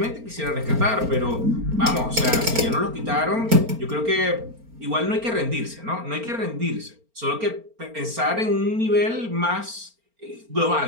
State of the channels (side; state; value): left; late; 4.4 ms